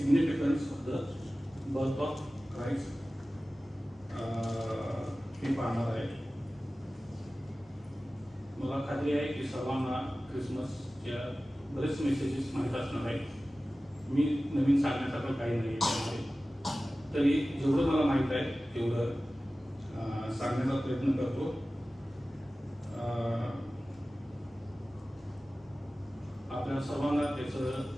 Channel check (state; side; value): normal; both; correlation 0.96